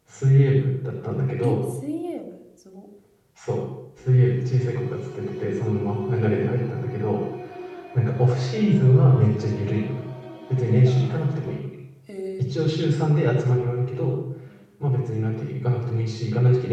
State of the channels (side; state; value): both; identical; correlation 1.00